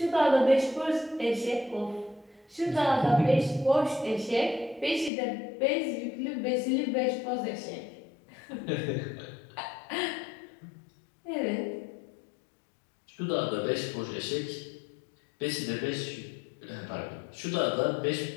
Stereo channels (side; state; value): right; drops out; at 5.1 s